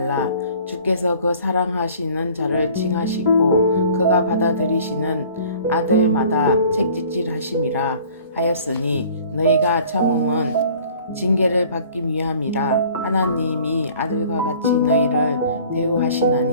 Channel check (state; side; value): inverted; both; correlation -0.50